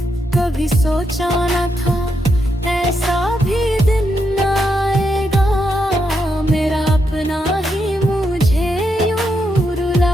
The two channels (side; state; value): both; normal; correlation 0.82